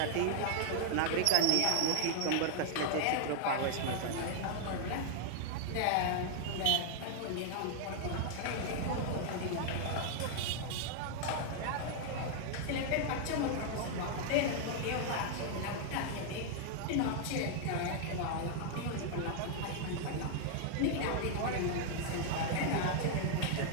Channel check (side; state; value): both; different; correlation 0.00